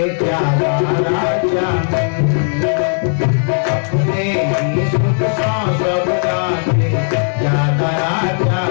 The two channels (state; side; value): silent; right; 60 dB below the other